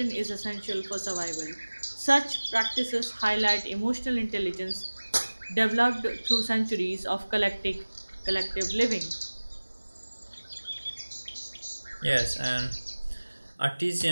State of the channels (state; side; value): inverted; both; correlation -1.00